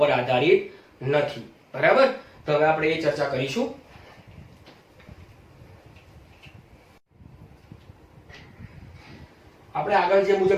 આધારિત નથી. બરાબર, તો હવે આપણે એ ચર્ચા કરીશું. આપણે આગળ જે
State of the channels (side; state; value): both; identical; correlation 1.00